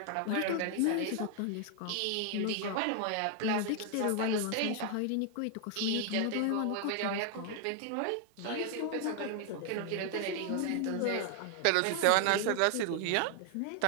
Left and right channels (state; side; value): different; both; correlation 0.00